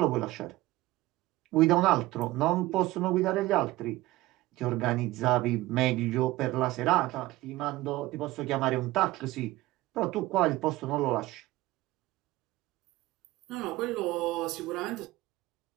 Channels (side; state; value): left; quieter; 18.2 dB